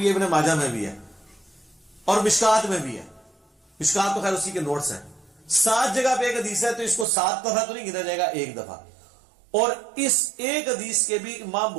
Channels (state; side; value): drops out; left; at 7.1 s